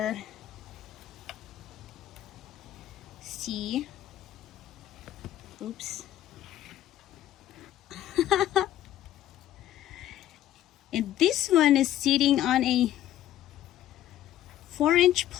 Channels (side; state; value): right; quieter; 12.7 dB